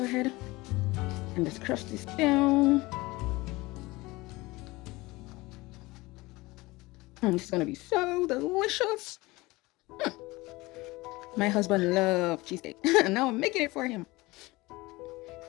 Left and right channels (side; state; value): right; quieter; 21.5 dB